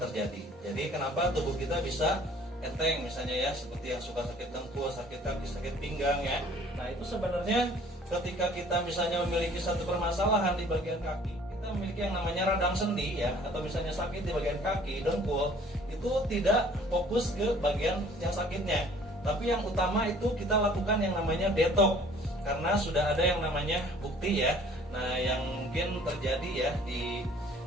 terjadi. Jadi kenapa tubuh kita bisa enteng misalnya ya, seperti yang suka sakit dengkul, sakit kaki, sakit pinggang ya. Nah, itu sebenarnya ketika kita misalnya memiliki satu permasalahan di bagian kaki, kita memiliki yang namanya radang sendi ya, atau misalnya sakit di bagian kaki, dengkul, itu tidak fokus ke bagian yang sakitnya, tapi yang utama itu kita lakukan yang namanya detox, karena sudah ada yang namanya bukti ya. Nah, yang mungkin terjadi ya di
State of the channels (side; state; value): both; normal; correlation 0.54